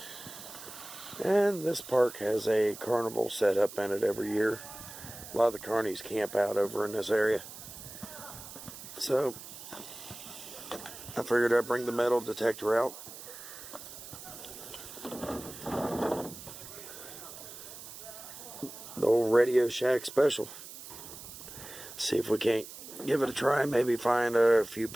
And this park has a carnival set up in it every year. A lot of the carnies camp out over in this area. So I figured I'd bring the metal detector out. The old Radio Shack special. See if we can't give it a try. Maybe find a few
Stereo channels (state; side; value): noise; right; hiss, 13 dB below the sound